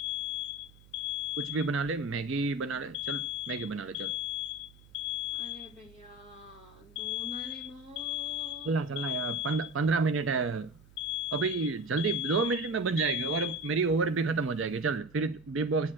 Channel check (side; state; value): right; noise; hum, 25 dB below the sound